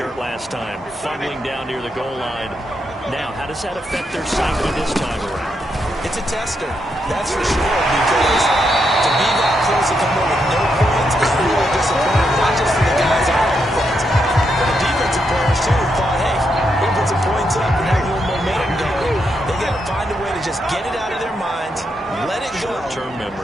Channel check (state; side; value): normal; both; correlation 0.81